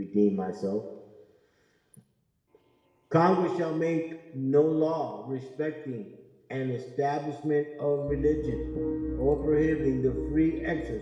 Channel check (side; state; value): both; identical; correlation 1.00